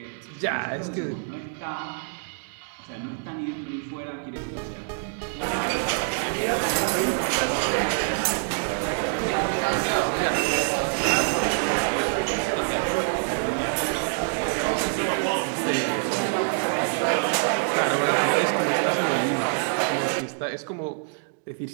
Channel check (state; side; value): silent; left; digital silence